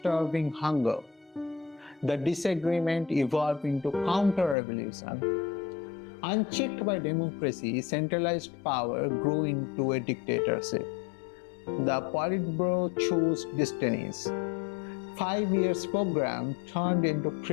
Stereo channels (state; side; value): drops out; right; at 4.5 s